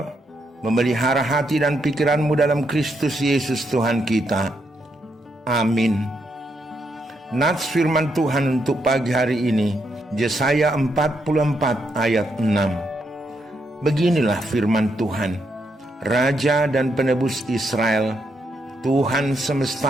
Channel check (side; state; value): both; normal; correlation 0.79